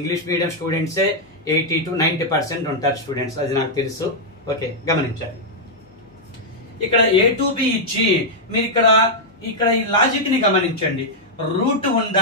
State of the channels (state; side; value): normal; both; correlation -0.05